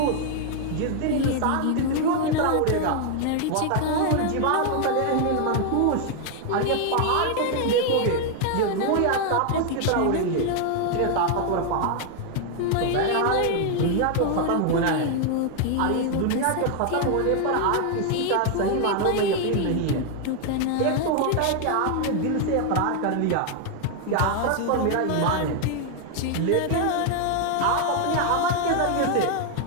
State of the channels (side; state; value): both; different; correlation 0.00